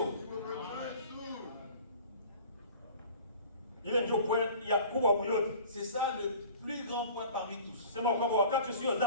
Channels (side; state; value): both; inverted; correlation -0.44